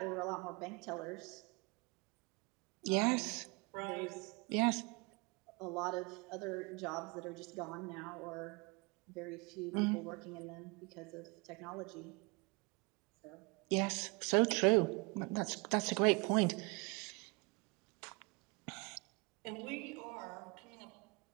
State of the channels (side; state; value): left; quieter; 28.4 dB